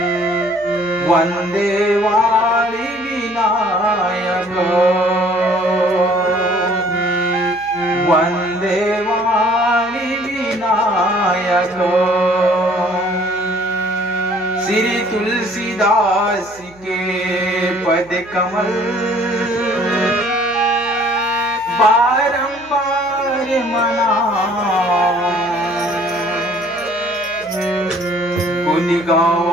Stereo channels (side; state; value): right; noise; hum, 26 dB below the sound